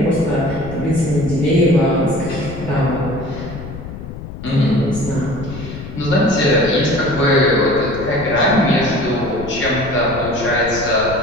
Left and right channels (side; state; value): left; noise; rumble, 11 dB below the sound